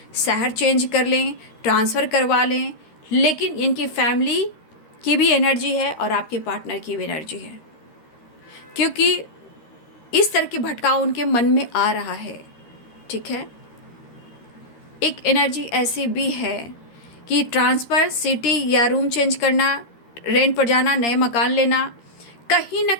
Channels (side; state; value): right; late; 13 ms